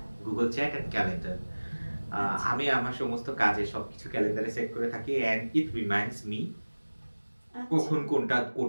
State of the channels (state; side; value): inverted; both; correlation -1.00